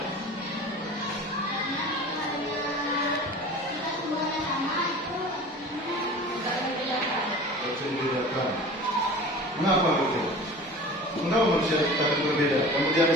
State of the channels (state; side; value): normal; both; correlation 0.39